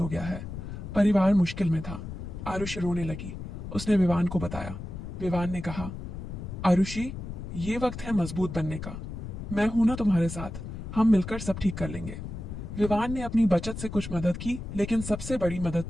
गया है। परिवार मुश्किल में था। आरुषि रोने लगी। उसने विवान को बताया। विवान ने कहा, आरुषि, ये वक्त है मजबूत बनने का। मैं हूं ना तुम्हारे साथ, हम मिलकर सब ठीक कर लेंगे। विवान ने अपनी बचत से कुछ मदद की, लेकिन सबसे बड़ी मदद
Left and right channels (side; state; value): left; noise; rumble, 8 dB below the sound